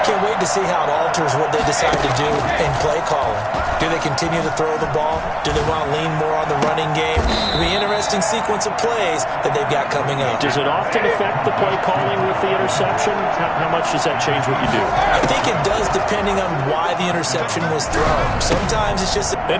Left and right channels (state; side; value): identical; both; correlation 1.00